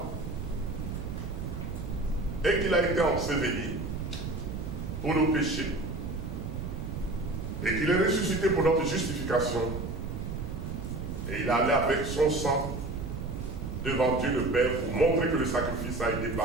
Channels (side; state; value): right; noise; rumble, 5 dB below the sound